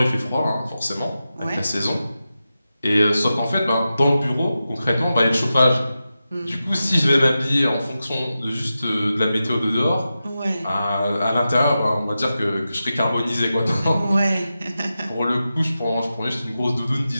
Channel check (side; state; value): both; inverted; correlation -0.92